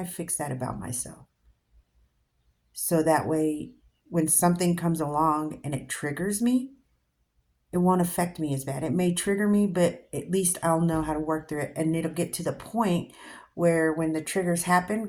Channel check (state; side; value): identical; both; correlation 1.00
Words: fix that about myself? So that way, when something comes along and it triggers me, it won't affect me as bad. It may trigger me, but at least I'll know how to work through it. And it'll get to the point where when the triggers happen,